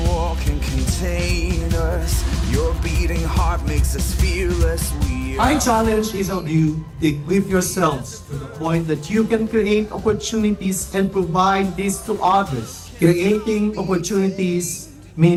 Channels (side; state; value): both; identical; correlation 1.00